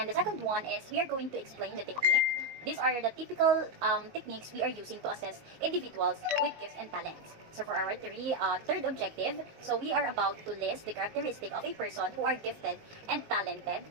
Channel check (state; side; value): late; left; 19 ms